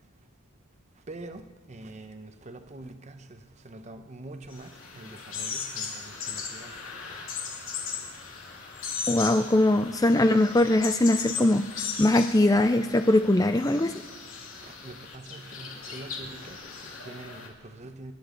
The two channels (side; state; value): both; normal; correlation 0.77